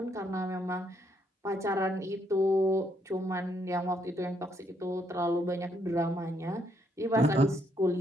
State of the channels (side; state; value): both; normal; correlation 0.73